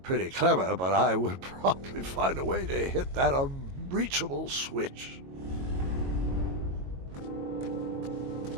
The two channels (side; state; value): left; late; 22 ms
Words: clever, but I would probably find a way to hit that unreachable switch.